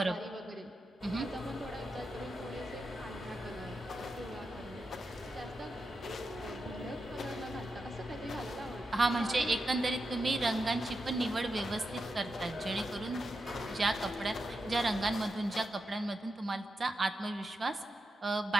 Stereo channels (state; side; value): normal; both; correlation 0.88